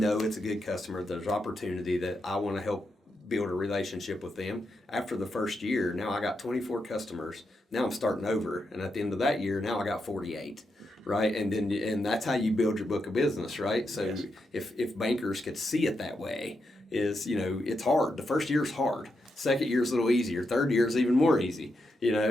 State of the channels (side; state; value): both; normal; correlation 0.84